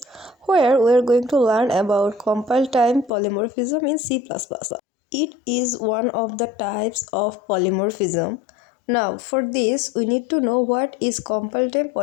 where we are going to learn about compile-time polymorphism in C++. It is one of the types of polymorphism. Now for this we need to know what is compile-time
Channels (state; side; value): drops out; right; at 3.1 s